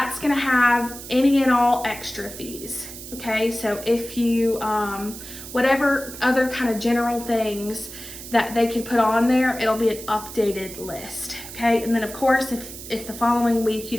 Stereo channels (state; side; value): noise; right; hiss, 13 dB below the sound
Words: gonna have any and all extra fees, okay? So if you, whatever other kind of general things that they could put on there, it'll be an updated list, okay? And then of course, if the following week you